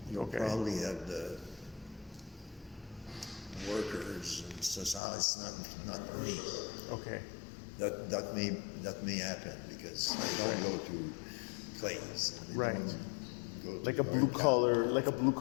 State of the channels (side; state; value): right; drops out; at 5.0 s